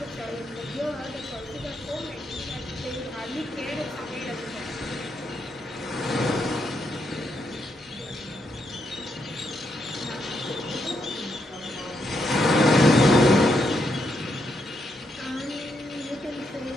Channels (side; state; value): both; normal; correlation 0.80